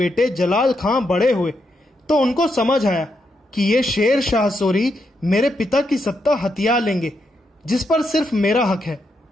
जलाल खान बड़े हुए तो उनको समझ आया कि ये शेर शाह सूरी मेरे पिता की सत्ता हथिया लेंगे, जिस पर सिर्फ मेरा हक है।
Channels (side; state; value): both; normal; correlation 0.81